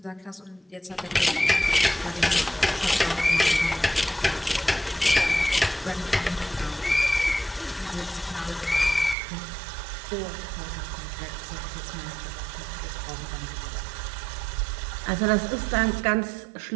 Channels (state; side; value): drops out; left; at 9.2 s